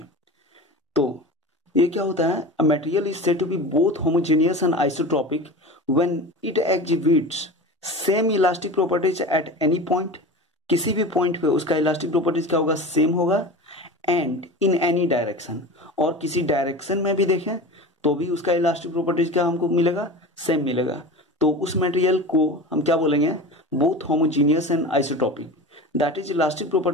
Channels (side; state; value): both; normal; correlation 0.31